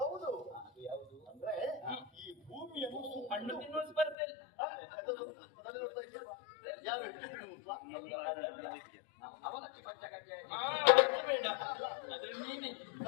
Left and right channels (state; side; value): drops out; right; at 4.2 s